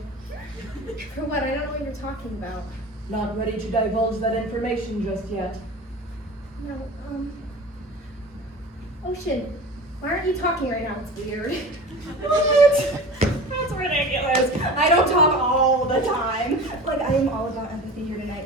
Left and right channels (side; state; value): both; normal; correlation 0.36